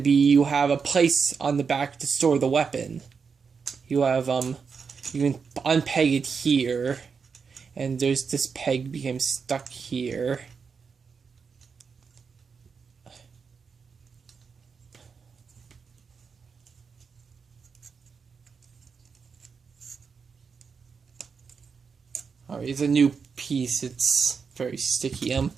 you have a place on the back to store the weapon. You have you can unpeg it here, and there's this peg became stuck here. Alright, it's a new piece. It's very sticky.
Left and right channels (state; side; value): quieter; left; 5.7 dB